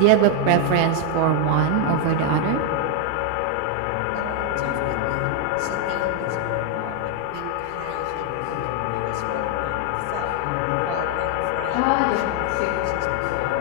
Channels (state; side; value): different; both; correlation 0.00